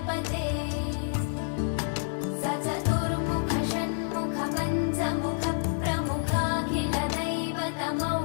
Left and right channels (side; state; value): right; silent; digital silence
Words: स चतुर्मुख षण्मुख पञ्चमुख प्रमुखाखिल